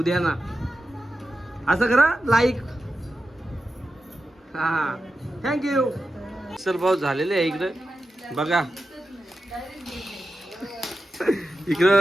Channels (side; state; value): both; normal; correlation 0.91